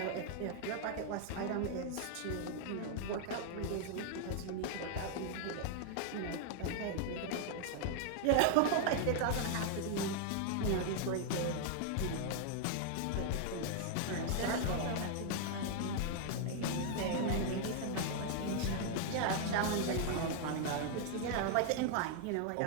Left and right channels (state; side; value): different; both; correlation 0.00